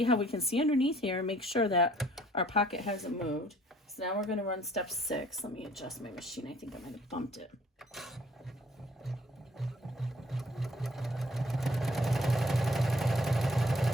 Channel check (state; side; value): normal; both; correlation 0.59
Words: how we can see underneath here and make sure that our pocket hasn't moved. So now we're going to run step 6. Let me adjust my machine. I think I might have bumped it.